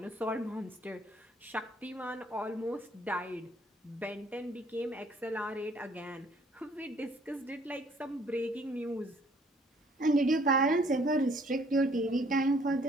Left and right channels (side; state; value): both; normal; correlation 0.61